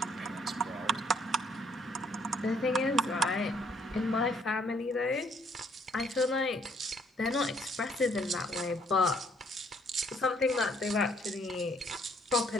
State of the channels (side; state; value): both; normal; correlation 0.66